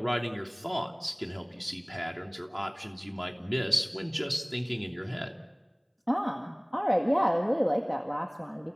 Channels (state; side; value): identical; both; correlation 1.00